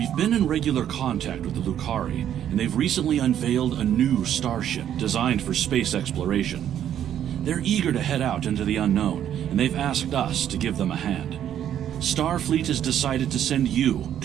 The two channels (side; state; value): left; quieter; 10.3 dB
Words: We've been in regular contact with the Lucari, and they've recently unveiled a new starship designed for space exploration. They're eager to head out into the unknown, and they've asked us to give them a hand. Starfleet has decided to send you